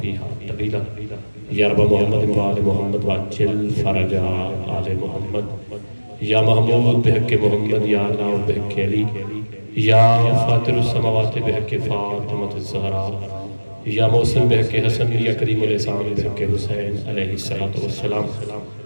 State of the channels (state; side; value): inverted; both; correlation -1.00